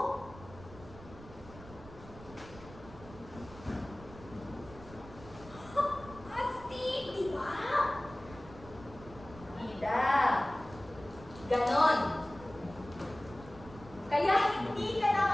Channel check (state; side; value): noise; right; rumble, 17 dB below the sound